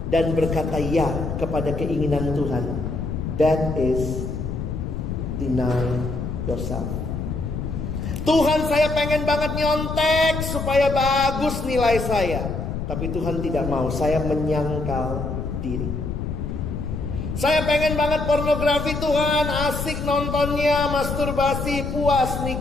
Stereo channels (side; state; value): left; noise; rumble, 4 dB below the sound